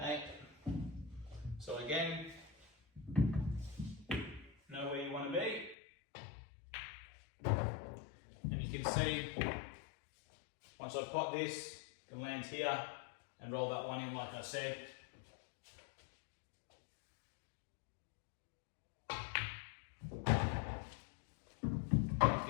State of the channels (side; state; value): right; drops out; at 5.8 s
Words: So again, know where you want to be. And you can see, once I've got this, I can land here and roll that one in like I said.